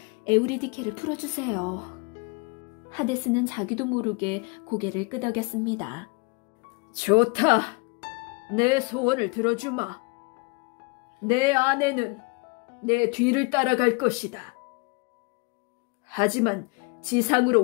에우리디케를 풀어주세요. 하데스는 자기도 모르게 고개를 끄덕였습니다. 좋다. 내 소원을 들어주마. 내 아내는 내 뒤를 따라갈 것이다. 하지만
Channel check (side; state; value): right; quieter; 29.8 dB